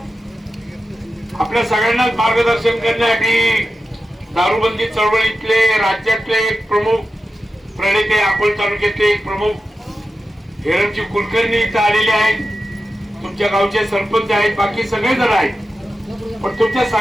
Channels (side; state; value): both; normal; correlation 0.92